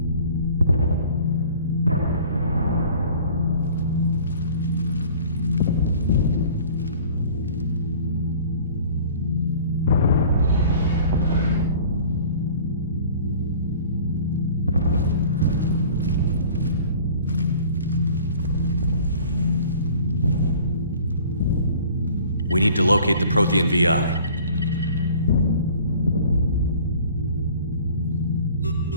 We need to locate the Prothean VI.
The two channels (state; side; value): inverted; both; correlation -0.48